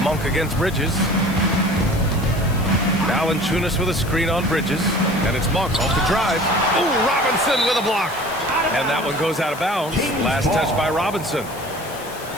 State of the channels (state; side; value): noise; left; hiss, 17 dB below the sound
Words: Monk against Bridges. Valanciunas with a screen on Bridges. And it's Monk off the drive. Oh, Robinson with a block. And that one goes out of bounds. Last touch by Robinson.